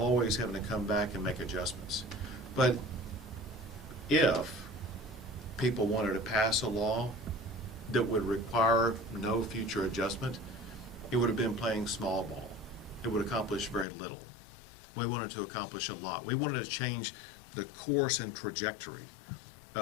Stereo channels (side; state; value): right; drops out; at 13.9 s